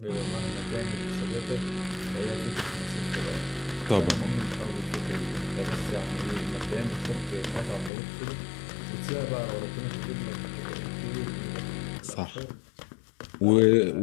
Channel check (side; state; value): right; drops out; at 7.9 s